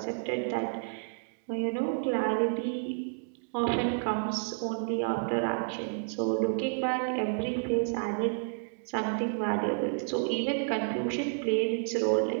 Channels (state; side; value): silent; left; digital silence